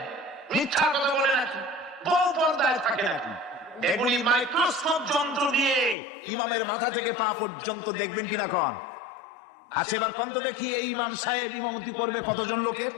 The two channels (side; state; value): right; drops out; at 6.0 s